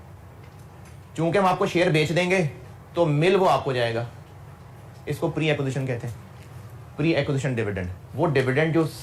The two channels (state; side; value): identical; both; correlation 1.00